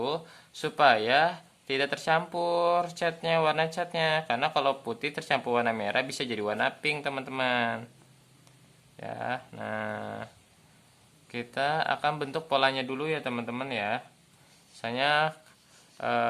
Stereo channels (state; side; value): identical; both; correlation 1.00